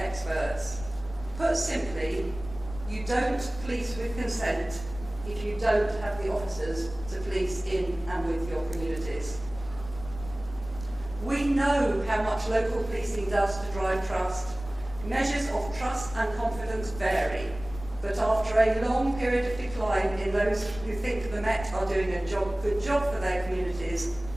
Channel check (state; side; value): noise; left; rumble, 14 dB below the sound